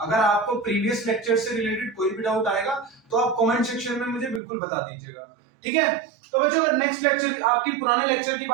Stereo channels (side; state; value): left; drops out; at 4.4 s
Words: अगर आपको प्रीवियस लेक्चर से रिलेटेड कोई भी डाउट आएगा तो आप कमेंट सेक्शन में मुझे बिल्कुल बता दीजिएगा, ठीक है। तो बच्चों, अगर नेक्स्ट लेक्चर, आपकी पुराने लेक्चर की